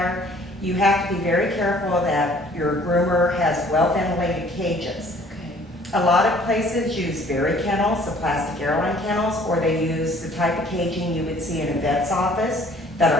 you have to be very careful that your groomer has well-ventilated cages. Okay. A lot of places use berry kennels, the plastic airline kennels, or they use the type of caging you would see in a vet's office that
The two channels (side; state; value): both; normal; correlation 0.56